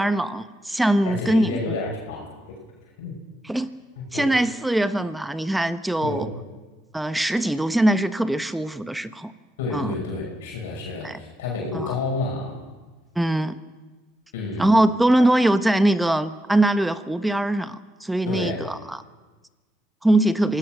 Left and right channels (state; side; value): normal; both; correlation 0.85